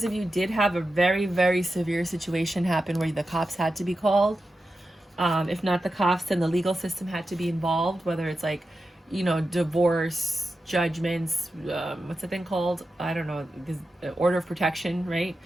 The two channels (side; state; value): both; normal; correlation 0.91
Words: of you did have a very, very severe situation happen where the cops had to be called. If not the cops, then the legal system had to be involved, whether it's like, you know, divorce, judgments, what's the thing called? I don't know, order of protection, right?